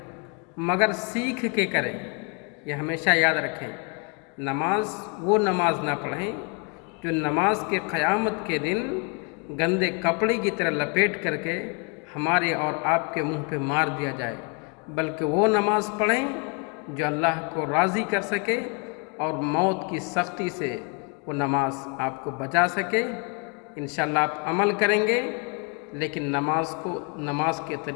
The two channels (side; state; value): right; quieter; 34.0 dB